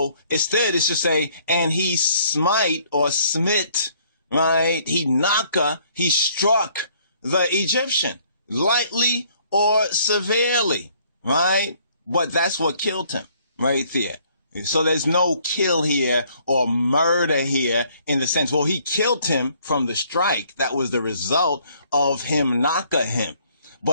instead it's to say, and he smite or smit, right? He Naka, he struck the Egyptian, lightly or severely, right? But that's what killed him right there. So there's no kill here or murder here in the sense, well, he killed him from the strike. That was the result of him knocking him.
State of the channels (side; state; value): both; inverted; correlation -0.63